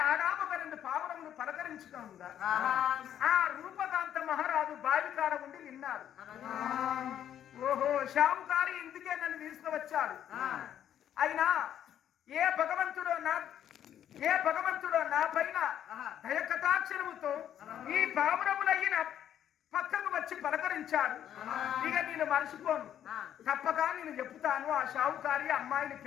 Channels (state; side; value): quieter; right; 10.3 dB